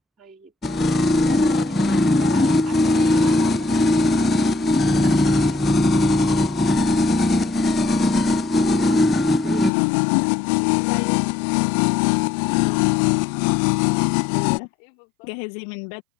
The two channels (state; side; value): drops out; right; at 9.7 s